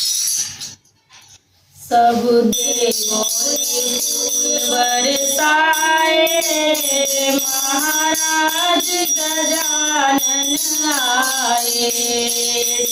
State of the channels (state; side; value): identical; both; correlation 1.00